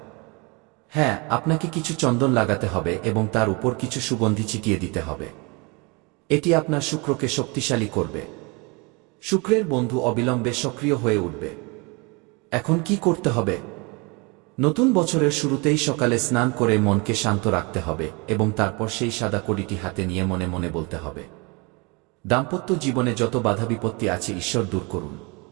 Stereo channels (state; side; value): quieter; left; 28.8 dB